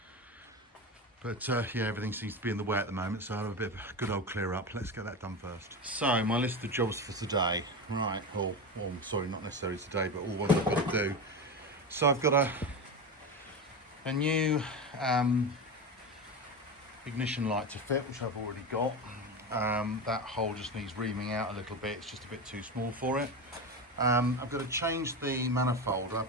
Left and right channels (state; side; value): normal; both; correlation 0.21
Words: But yeah, everything seems to be in the way at the moment, so I'll have a bit of a good old clear up. Let's get that done first. So my list of jobs for today, right, sorry, not necessarily today, but all what I've got to do. So I've got a new ignition light to fit, which I've already got. That hole just needs reaming out a little bit, it's just a bit too small for it. I've got to change the manifold.